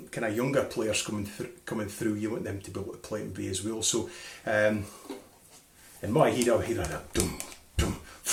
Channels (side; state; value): both; identical; correlation 1.00